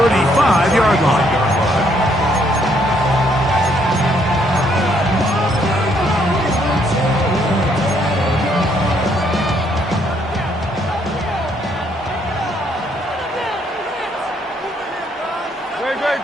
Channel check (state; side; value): normal; both; correlation 0.70